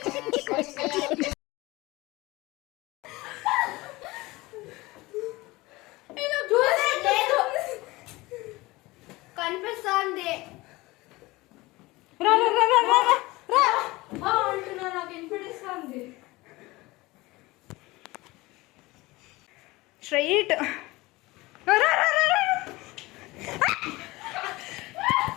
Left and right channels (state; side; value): quieter; right; 21.0 dB